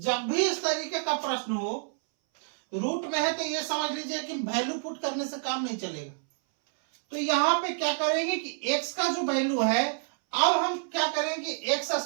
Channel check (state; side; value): silent; left; 59 dB below the other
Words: भी इस तरीके का प्रश्न हो, रूट में है तो ये समझ लीजिए कि वैल्यू पुट करने से काम नहीं चलेगा। तो यहां पे क्या करेंगे कि x का जो वैल्यू है, अब हम क्या करेंगे, एक्स